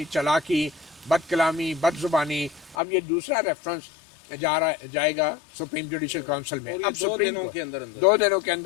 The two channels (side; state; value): right; drops out; at 2.8 s